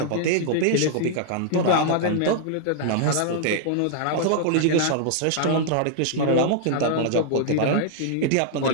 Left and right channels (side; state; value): both; different; correlation -0.01